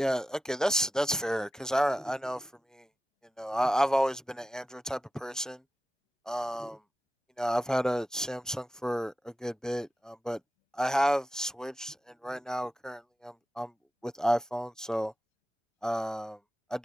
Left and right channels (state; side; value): normal; both; correlation 0.92